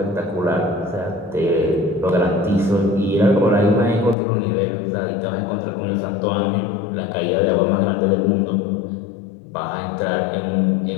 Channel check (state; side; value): drops out; right; at 4.2 s